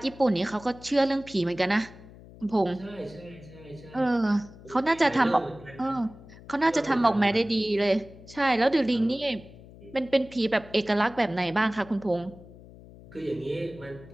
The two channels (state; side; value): noise; left; hum, 20 dB below the sound